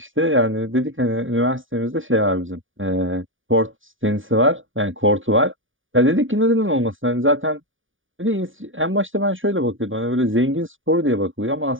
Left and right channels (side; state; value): left; late; 0.57 ms